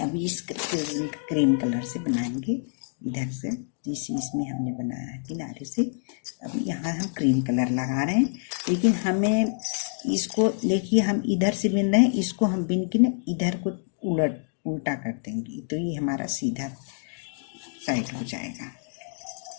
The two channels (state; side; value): silent; right; digital silence